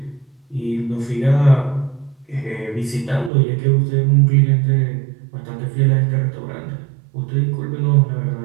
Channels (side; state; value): left; drops out; at 3.3 s